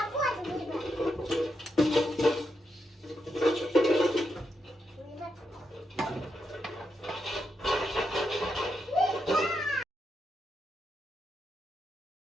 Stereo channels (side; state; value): both; normal; correlation 0.83